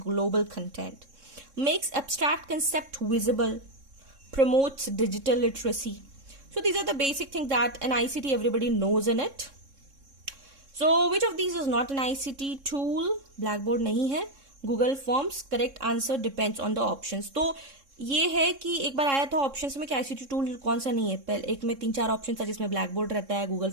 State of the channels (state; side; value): late; left; 3.6 ms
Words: global content. Makes abstract concept visible, promotes digital literacy. So these are the basic things that an ICT everybody knows in it. So which of these is not an ICT tool? Blackboard नहीं है. Google Forms, correct answer depends on the options. तो ये है कि एक बार आया था options में कि ICT टूल कौन सा नहीं है. पहले एक में 3-4 ऑप्शन था जिसमें ब्लैकबोर्ड रहता है, गूगल